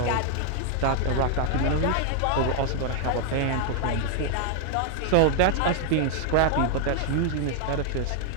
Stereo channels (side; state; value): both; different; correlation 0.00